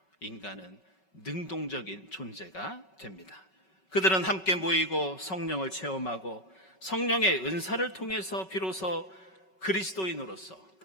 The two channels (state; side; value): late; right; 5.3 ms